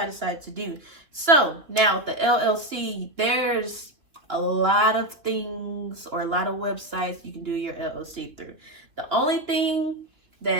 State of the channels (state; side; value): late; left; 2.9 ms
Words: I decided to do. So now with the LLC, there's a lot of things or a lot of websites you can do your LLC through. The only thing